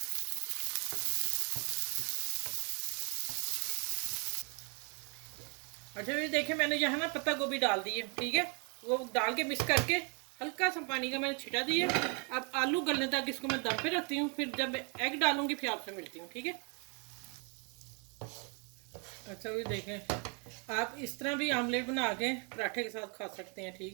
अच्छा, ये देखें मैंने यहाँ ना पत्ता गोभी डाल दी है, ठीक है, वो डाल के मिक्स करके हल्का सा पानी का मैंने छिटा दिया। अब आलू गलने तक इसको मैं दम पे रखती हूँ, फिर जब एग डालूंगी फिर आपसे मिलती हूँ, ठीक है। अच्छा, ये देखें, आप इस तरह भी आमलेट बना के पराठे के साथ खा सकते हैं,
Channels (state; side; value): quieter; left; 35.9 dB